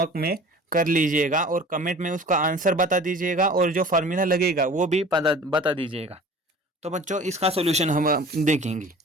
में कर लीजिएगा और कमेंट में उसका आंसर बता दीजिएगा, और जो फार्मूला लगेगा वो भी बता दीजिएगा। तो बच्चों इसका सोल्यूशन हम देखेंगे।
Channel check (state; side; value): normal; both; correlation 0.44